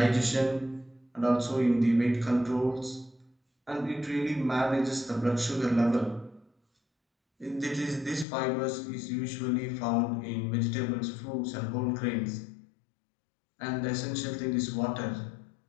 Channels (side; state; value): right; drops out; at 8.2 s